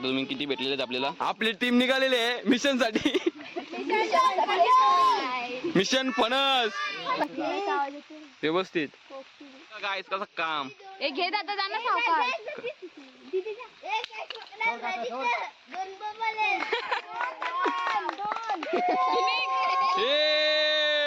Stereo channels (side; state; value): both; identical; correlation 1.00